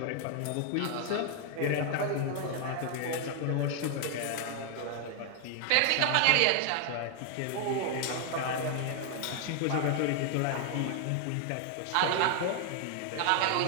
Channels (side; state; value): both; different; correlation 0.00